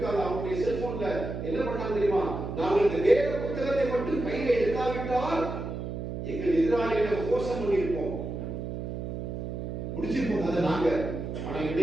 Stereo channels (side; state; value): right; noise; hum, 5 dB below the sound